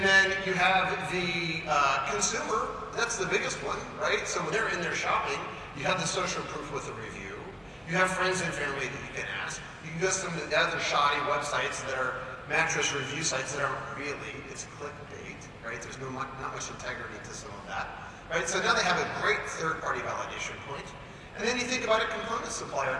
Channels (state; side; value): identical; both; correlation 1.00